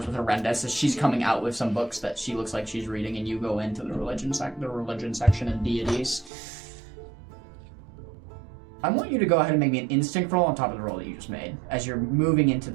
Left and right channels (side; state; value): left; drops out; at 6.3 s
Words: with Arendis as she's coming out with some books that she looks like she's reading, and you go into the religion section and deities. I want you to go ahead and make me an instinct roll on top of the roll that you just made. As you're moving into